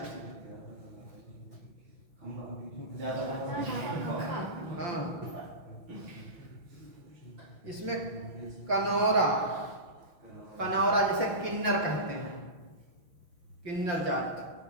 हाँ, इसमें कनौरा, कनौरा जैसे किन्नर कहते हैं, किन्नर जाति।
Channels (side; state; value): left; late; 5.7 ms